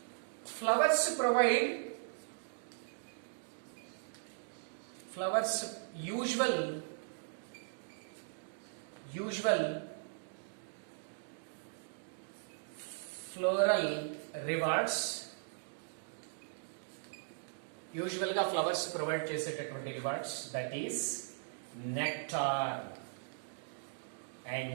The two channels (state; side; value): silent; left; digital silence